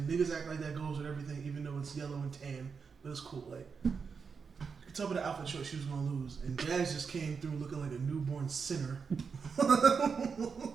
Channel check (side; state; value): left; quieter; 5.7 dB